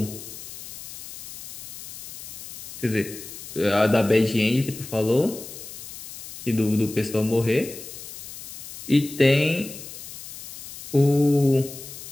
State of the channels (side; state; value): left; noise; hiss, 13 dB below the sound